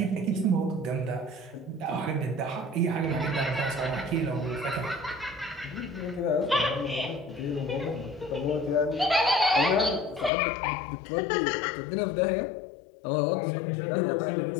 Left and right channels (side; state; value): right; drops out; at 10.3 s